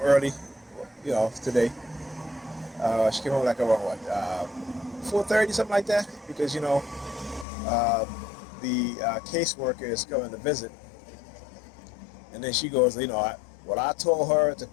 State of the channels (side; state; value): right; drops out; at 7.5 s